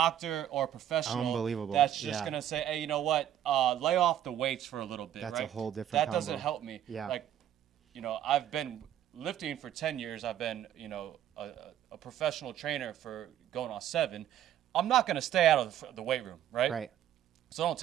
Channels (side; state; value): left; quieter; 11.1 dB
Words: or a professional. Unbelievable. That's just going to say, hey, you know what? Lay off the weights for a little bit, That's right? a whole different That doesn't combo. help me. Yeah. Like, you know, I've been lifting for 10 years. I've been, you know, a professional trainer for going on 7. I'm not going to stay out of the weight room, right? Right. So don't